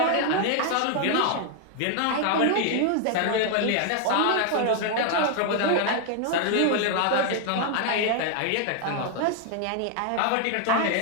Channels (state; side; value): different; both; correlation 0.00